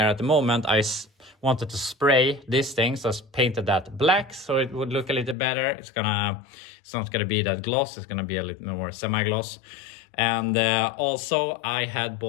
at the moment, I wanted to spray this thing, so I painted that black so it would look a little better. It's not gonna be that gloss, it's gonna be a little more semi-gloss. And also I had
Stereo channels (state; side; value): drops out; right; at 5.4 s